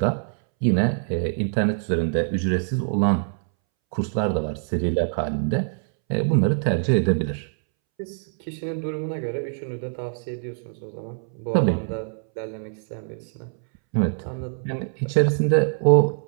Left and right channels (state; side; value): silent; left; 62 dB below the other